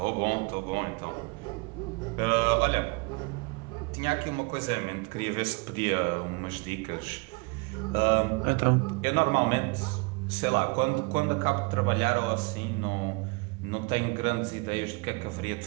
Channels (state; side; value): quieter; left; 28.2 dB